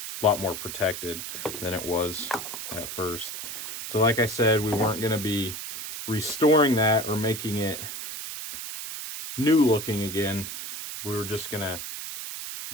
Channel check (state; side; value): noise; right; hiss, 7 dB below the sound